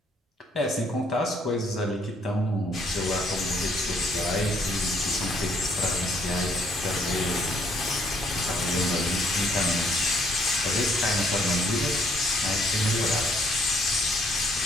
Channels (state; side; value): normal; both; correlation 0.67